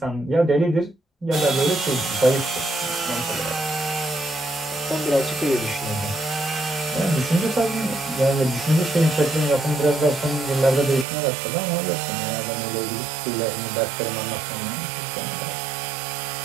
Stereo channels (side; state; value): left; drops out; at 11.1 s